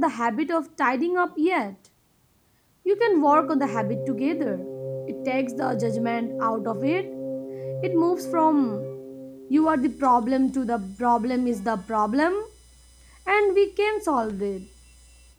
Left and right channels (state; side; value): identical; both; correlation 1.00